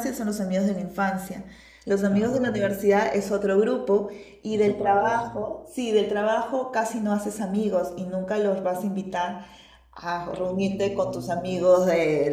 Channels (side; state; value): both; identical; correlation 1.00